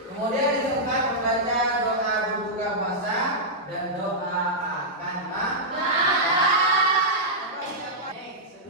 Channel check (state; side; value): normal; both; correlation -0.10